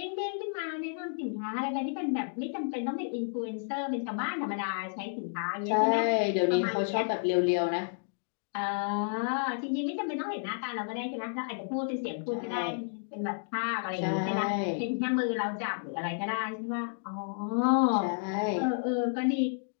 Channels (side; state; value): right; silent; digital silence